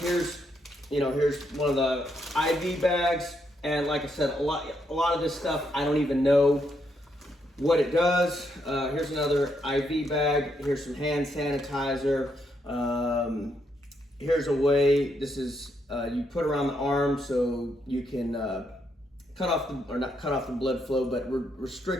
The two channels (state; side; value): normal; both; correlation 0.77